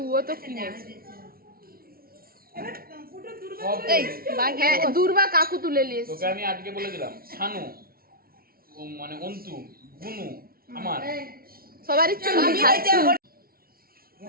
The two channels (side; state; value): left; late; 0.43 ms